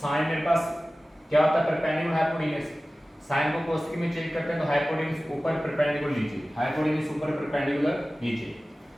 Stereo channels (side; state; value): both; normal; correlation 0.97